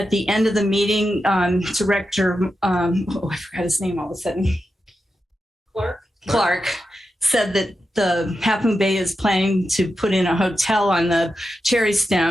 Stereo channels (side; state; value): both; normal; correlation 0.89